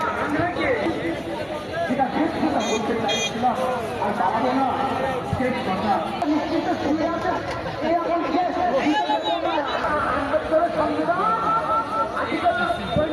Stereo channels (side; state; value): both; identical; correlation 1.00